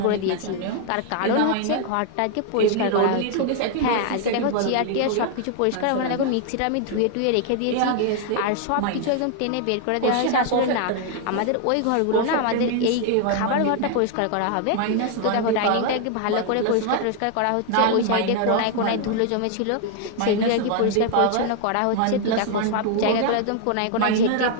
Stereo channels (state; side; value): different; both; correlation 0.00